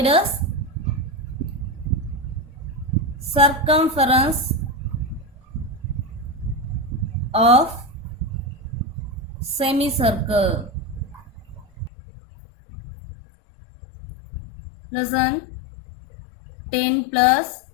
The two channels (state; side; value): drops out; right; at 11.9 s